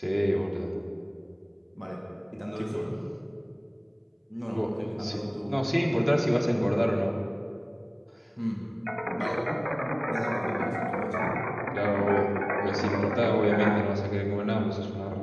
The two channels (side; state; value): both; identical; correlation 1.00